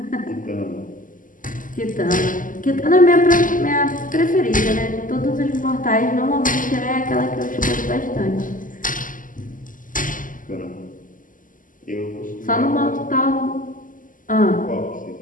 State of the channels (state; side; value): late; right; 0.38 ms